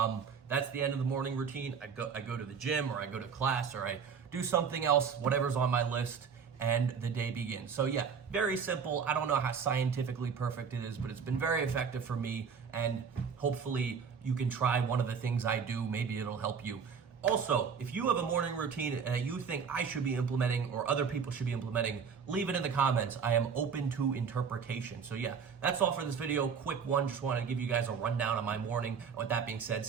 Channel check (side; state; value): left; quieter; 6.4 dB